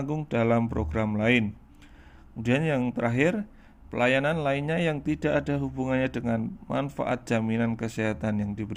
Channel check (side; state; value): both; identical; correlation 1.00